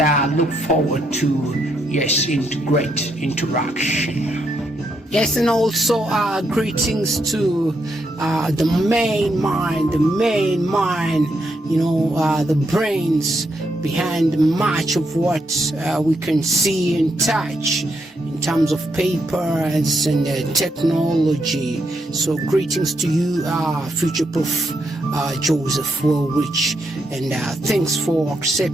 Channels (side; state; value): both; normal; correlation 0.79